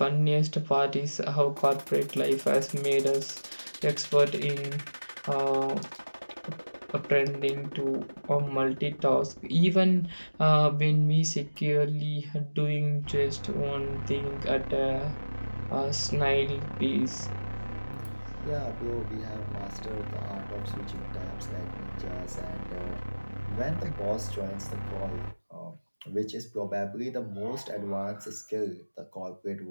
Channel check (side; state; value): both; inverted; correlation -1.00